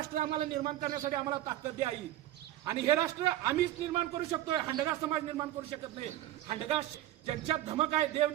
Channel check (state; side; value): quieter; left; 14.0 dB